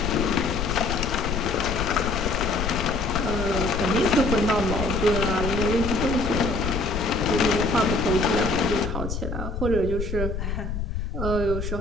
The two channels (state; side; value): noise; left; rumble, 4 dB below the sound